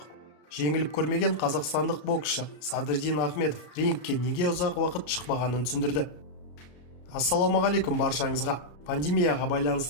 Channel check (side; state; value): right; late; 33 ms